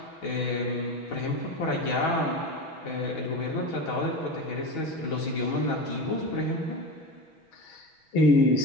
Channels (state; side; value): late; right; 6.2 ms